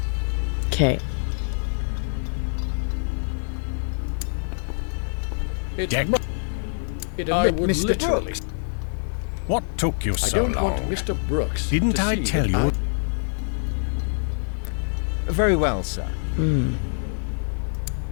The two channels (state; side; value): silent; right; digital silence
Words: Okay. Deck. I would Mr. literally. Brooks. What took you I so don't long? want Mr. Brooks. Didn't to I see tell that you? Very well, sir. Hmm.